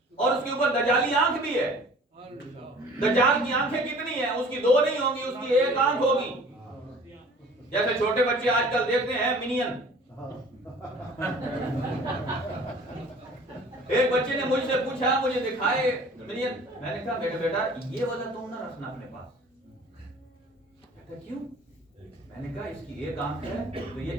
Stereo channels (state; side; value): normal; both; correlation 0.48